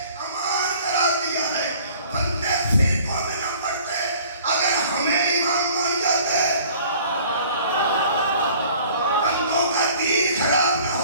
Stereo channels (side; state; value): both; inverted; correlation -0.51